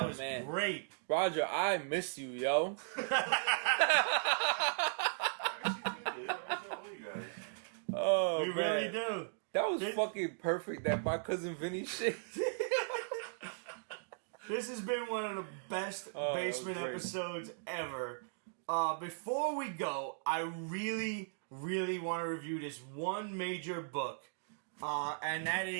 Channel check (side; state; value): left; silent; digital silence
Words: was man. great. Roger, I miss you, yo. I miss all you guys. Oh, We really man. do. That was This- fucking perfect. That my cousin Vinny shit. This has been one of the best basement okay. episodes ever. Before we go, I really, really want to review this one major book, and that